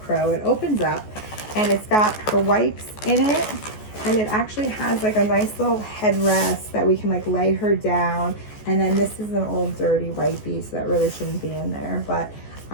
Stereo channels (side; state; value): right; late; 14 ms